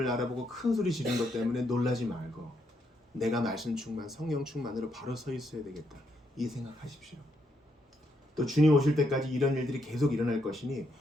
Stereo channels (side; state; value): both; normal; correlation 0.77